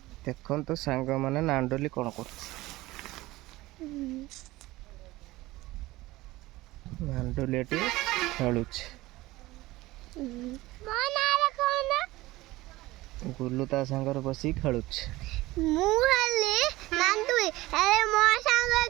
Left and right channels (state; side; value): quieter; left; 18.8 dB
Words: ଦେଖନ୍ତୁ ସାଙ୍ଗମାନେ ନାଣ୍ଡୁଲି କ'ଣ କରୁଛି। ନାଣ୍ଡୁଲି ଏଠି ଖେଳୁଛି। ଗୁଲୁ ତା ସାଙ୍ଗରେ ବସିକି ଖେଳୁଛି। ମୁଁ ହେଲି ନାଣ୍ଡୁଲି, ଆରେ ମୋ ସାଙ୍ଗ